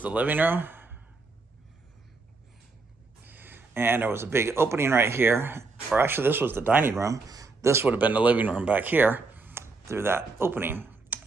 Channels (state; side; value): quieter; left; 3.9 dB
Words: the living room. And there was a big opening right here, or actually this was the dining room. This would have been the living room back here through that opening.